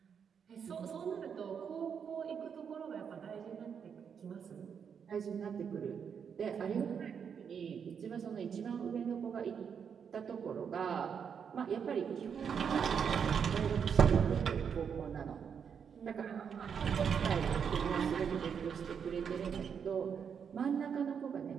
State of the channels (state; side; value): quieter; left; 7.1 dB